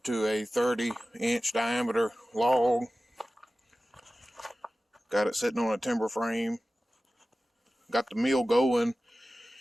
to a 30-inch diameter log. Got it sitting on a timber frame. Got the mill going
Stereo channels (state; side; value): normal; both; correlation 0.96